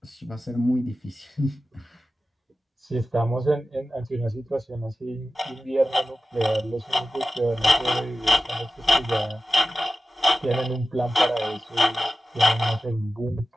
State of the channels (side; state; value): both; normal; correlation 0.94